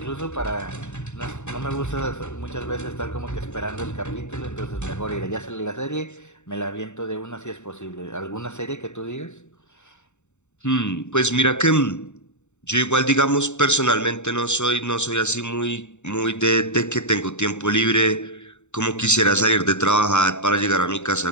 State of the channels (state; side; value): late; right; 0.83 ms